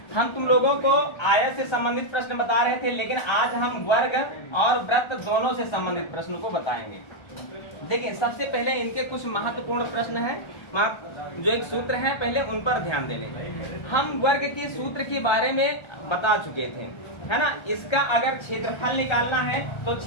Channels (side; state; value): right; late; 1.3 ms